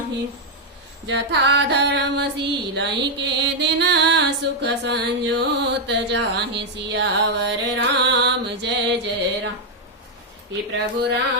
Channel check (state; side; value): normal; both; correlation -0.01